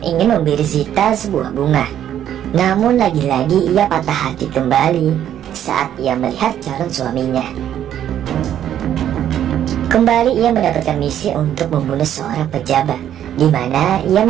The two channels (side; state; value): left; quieter; 10.6 dB